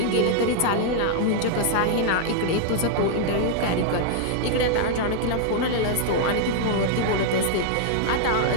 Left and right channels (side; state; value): both; different; correlation -0.01